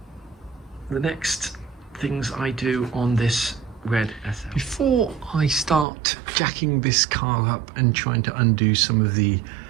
the next things I do on this red SL. Before I start jacking this car up and trying to undo some of the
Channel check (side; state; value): left; drops out; at 5.9 s